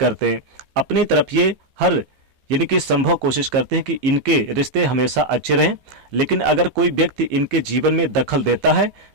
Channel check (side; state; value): left; late; 15 ms